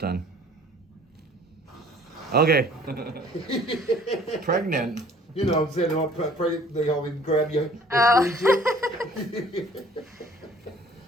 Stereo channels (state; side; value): normal; both; correlation 0.53